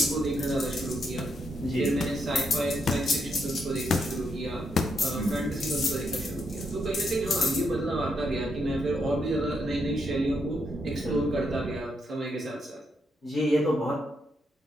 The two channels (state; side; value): normal; both; correlation 0.79